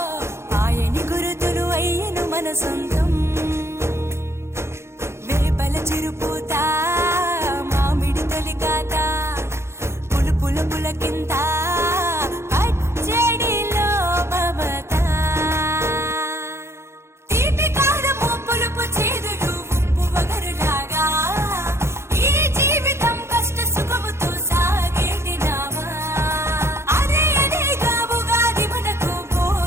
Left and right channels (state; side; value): late; left; 0.13 ms